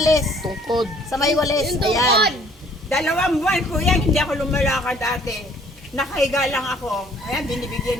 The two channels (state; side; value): normal; both; correlation 0.58